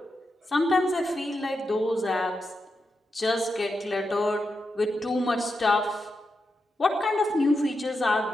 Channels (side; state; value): both; normal; correlation 0.87